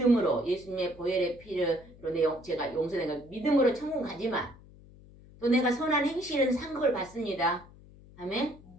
예수님의 보혈의 피로 제가 용서된 거 믿음으로 천국 가지만 또 내가 선한 행실은 상급을 받습니다. 아멘?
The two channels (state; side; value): noise; left; hum, 22 dB below the sound